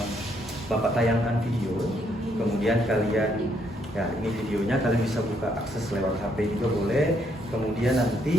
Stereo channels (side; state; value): both; normal; correlation 0.72